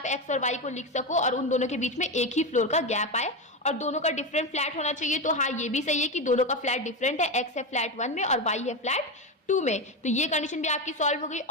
X और Y को लिख सको और उन दोनों के बीच में एक ही फ्लोर का गैप आए, और दोनों का डिफरेंट फ्लैट होना चाहिए। तो हाँ, ये भी सही है कि दोनों का फ्लैट डिफरेंट है, X है फ्लैट 1 में और Y है फ्लैट 2 में, तो ये कंडीशन भी आपकी सॉल्व हो गई।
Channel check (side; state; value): both; normal; correlation 0.15